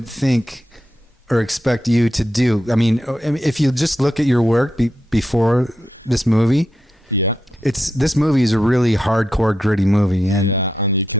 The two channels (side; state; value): both; normal; correlation 0.85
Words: think or expect you to do. I mean, if you just look at your work before this movie, this movie is a really hardcore, gritty movie, and